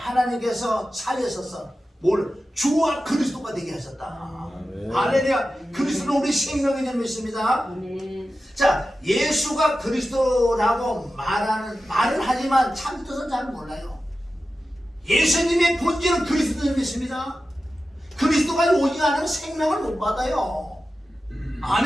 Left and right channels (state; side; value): normal; both; correlation 0.93